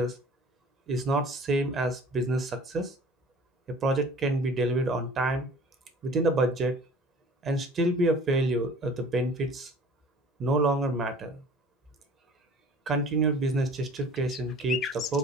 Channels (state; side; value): normal; both; correlation 0.47